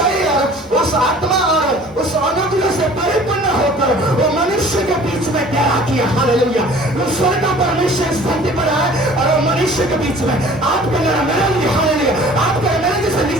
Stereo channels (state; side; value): normal; both; correlation 0.49